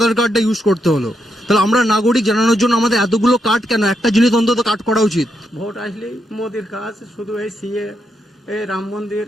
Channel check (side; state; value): both; normal; correlation 0.81